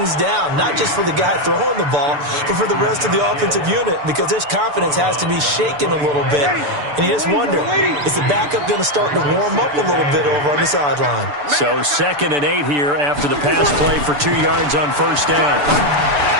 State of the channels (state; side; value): late; left; 6.9 ms